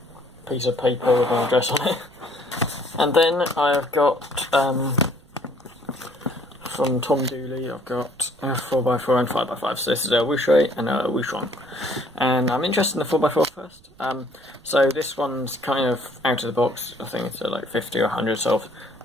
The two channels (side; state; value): right; noise; rumble, 27 dB below the sound